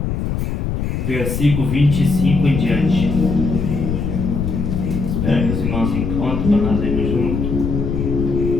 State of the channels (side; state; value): left; noise; rumble, 2 dB below the sound